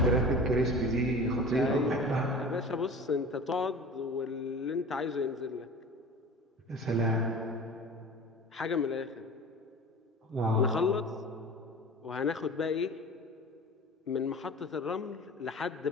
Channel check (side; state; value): both; normal; correlation 0.38